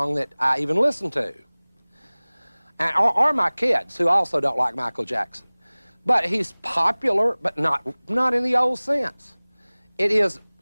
that I even listened to. Or my kids, who also don't like Michael Jackson. But he's popular, but not in the old sense. It is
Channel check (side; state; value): both; inverted; correlation -1.00